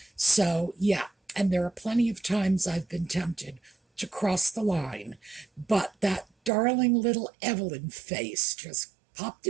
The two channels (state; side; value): drops out; left; at 6.5 s